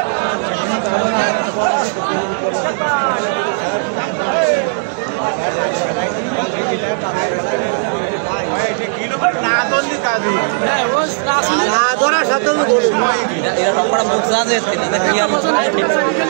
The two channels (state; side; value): silent; left; digital silence